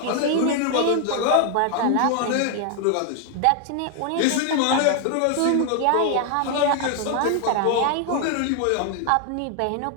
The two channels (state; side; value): different; both; correlation 0.00